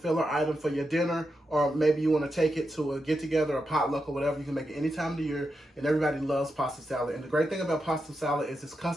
item for your dinner, or maybe you want to take it to a get-together, a potluck, or whatever. You can make it any time of the year, and everybody loves pasta salad. And the great thing about pasta salad is it's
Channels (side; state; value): both; normal; correlation 0.87